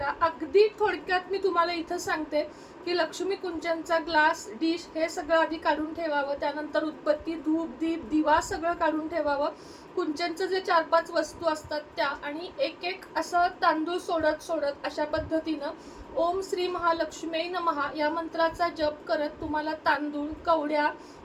अगदी थोडक्यात मी तुम्हाला इथं सांगते की लक्ष्मी कुंचनचा ग्लास, डिश हे सगळं आधी काढून ठेवावं. त्यानंतर उदबत्ती, धूप, दीप, दिवा सगळं काढून ठेवावं. कुंचनचं जे 4-5 वस्तू असतात त्या, आणि 1-1 असं तांदूळ सोडत अशा पद्धतीनं ओम श्री महालक्ष्मी नमः या मंत्राचा जप करत तुम्हाला तांदूळ, कवड्या,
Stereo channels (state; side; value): identical; both; correlation 1.00